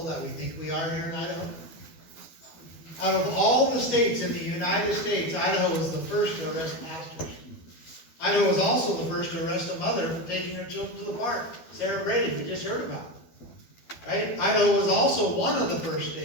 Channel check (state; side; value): late; right; 12 ms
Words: that we think we are here in Idaho? Out of all the states in the United States, Idaho was the first to arrest pastors. Idaho was also the first to arrest a mother for taking her children to the park. Sarah Brady, we just heard about it. Right? Idaho was also one of the first